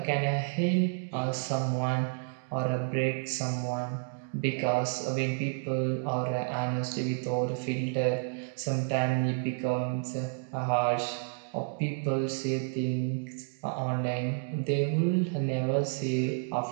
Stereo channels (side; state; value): left; silent; 57 dB below the other